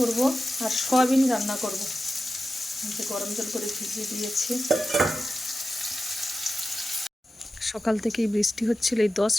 আর সয়াবিন রান্না করব। যে গরম জল করে ভিজিয়ে দিয়েছি। সকাল থেকেই বৃষ্টি হচ্ছিল, এই 10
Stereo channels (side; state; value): both; normal; correlation 0.92